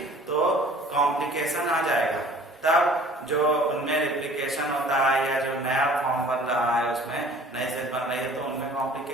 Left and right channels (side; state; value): both; normal; correlation 0.50